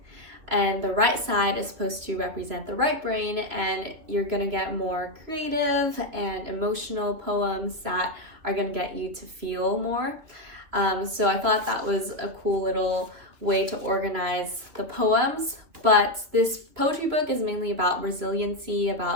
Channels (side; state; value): left; late; 3.0 ms